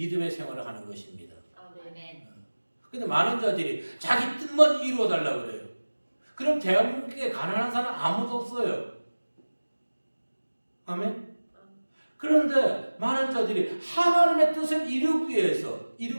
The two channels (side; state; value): both; inverted; correlation -1.00